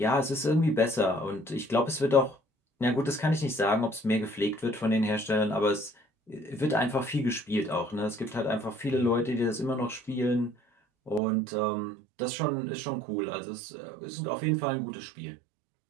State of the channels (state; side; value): drops out; left; at 11.2 s